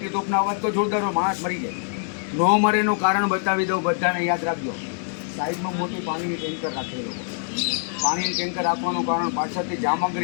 તોપના અવાજ તો જોરદાર હોય, માણસ મરી જાય. ન મરેનું કારણ બતાવી દઉં, બધાને યાદ રાખજો. સાઈડમાં મોટી પાણીની ટેન્કર રાખેલી લોકો. પાણીની ટેન્કર રાખવાનું કારણ પાછળથી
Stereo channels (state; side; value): silent; right; 58 dB below the other